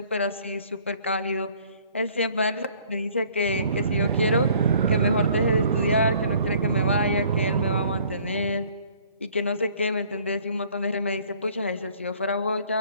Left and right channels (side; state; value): both; inverted; correlation -0.56